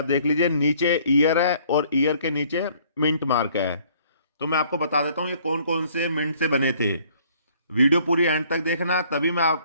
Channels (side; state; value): both; inverted; correlation -0.60